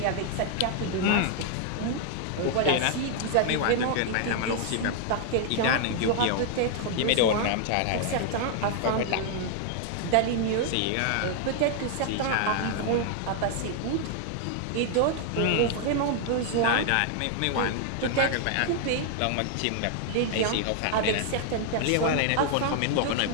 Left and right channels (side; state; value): both; different; correlation 0.00